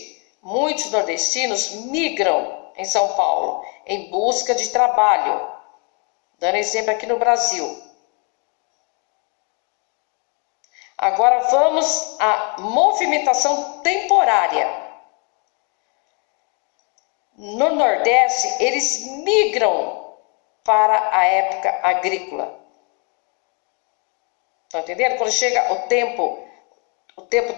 muitos nordestinos migram em São Paulo em busca de trabalho. Dando exemplo aqui no Brasil. Agora vamos à movimentação temporária. No Nordeste, eles migram para a época agrícola. Estão entendendo? Quando chega o tempo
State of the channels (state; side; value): quieter; right; 35.1 dB